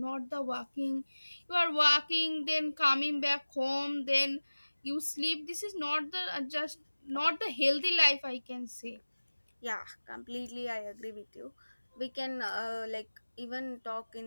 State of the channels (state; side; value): inverted; both; correlation -1.00